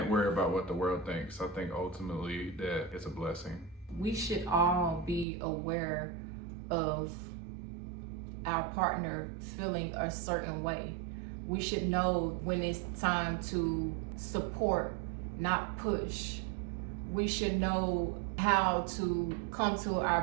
worry about what the world thinks. I think ultimately that it's a blessing. We should all be aware of our partner feeling a certain way. We should know when it's time to support, not push. We should know how to come to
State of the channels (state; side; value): drops out; left; at 5.2 s